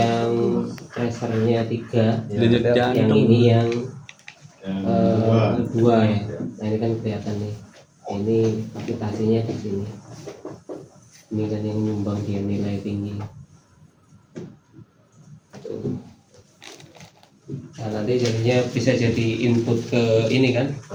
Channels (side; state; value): both; identical; correlation 1.00